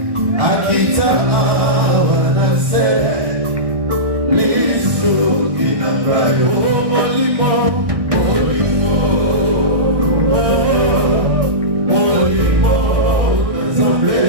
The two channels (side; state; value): left; late; 1.1 ms